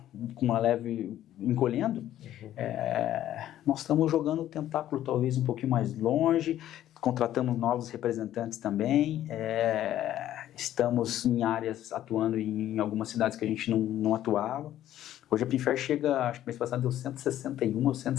com uma leve encolhendo, nós estamos jogando o tentáculo talvez um pouquinho mais longe, contratamos novos representantes também, estamos em áreas atuando em algumas cidades que a gente não atuava. Hoje a Pinfair chega, acho que mês passado deu 161 ou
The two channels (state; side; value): quieter; right; 12.5 dB